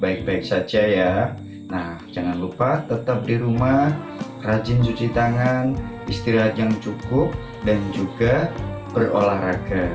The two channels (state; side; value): identical; both; correlation 1.00